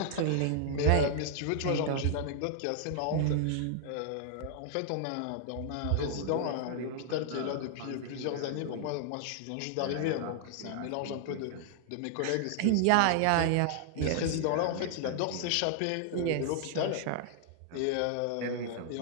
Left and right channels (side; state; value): both; different; correlation 0.00